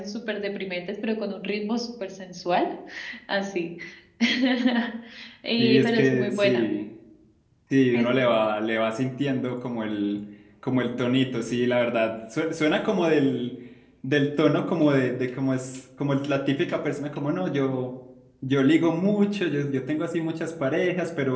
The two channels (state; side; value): identical; both; correlation 1.00